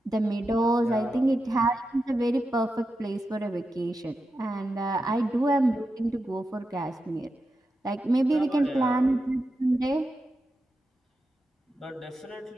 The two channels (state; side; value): normal; both; correlation 0.89